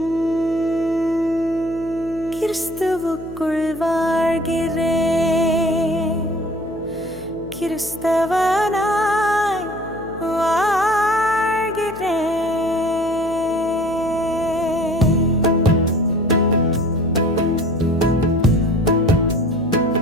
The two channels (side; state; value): left; noise; hum, 16 dB below the sound